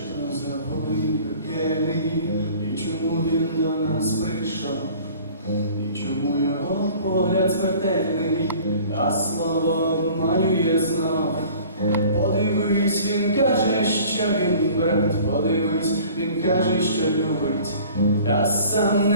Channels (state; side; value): inverted; both; correlation -0.48